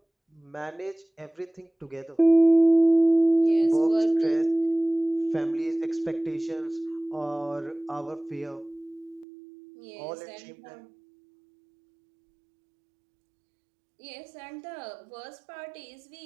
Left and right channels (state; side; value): drops out; left; at 9.2 s